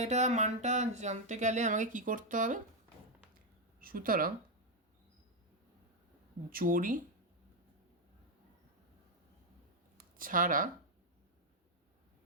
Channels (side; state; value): both; normal; correlation 0.02